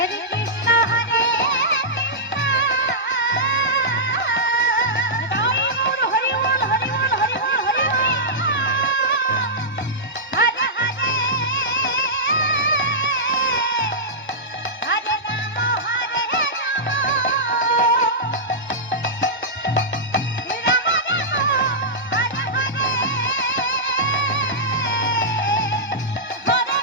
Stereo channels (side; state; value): both; normal; correlation -0.12